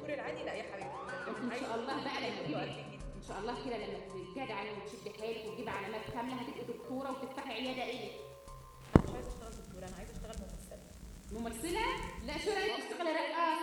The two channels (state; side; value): identical; both; correlation 1.00